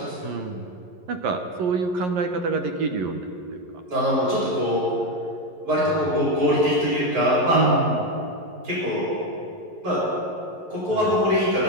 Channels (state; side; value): late; left; 11 ms